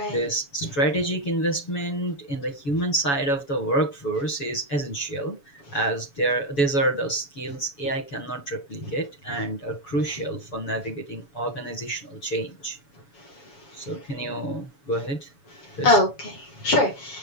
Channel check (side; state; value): right; late; 7.1 ms